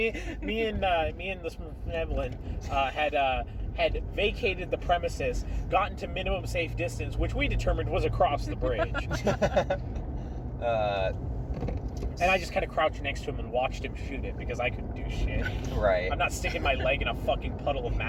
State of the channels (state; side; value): identical; both; correlation 1.00